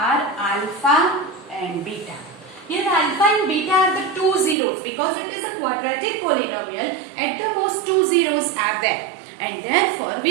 alpha and beta. Here alpha and beta are the two zeros because it is a quadratic polynomial. At the most two zeros are there, and therefore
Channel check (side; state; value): left; drops out; at 4.5 s